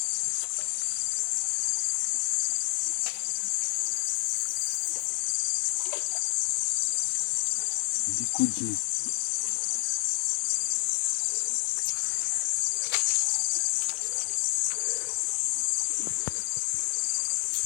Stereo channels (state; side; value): silent; right; 59 dB below the other